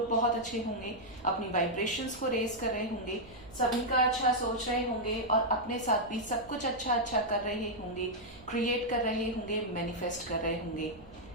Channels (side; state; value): right; noise; hum, 21 dB below the sound